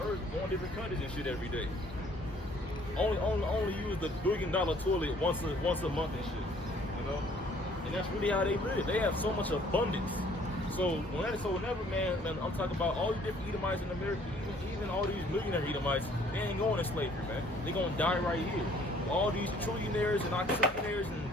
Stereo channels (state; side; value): normal; both; correlation 0.59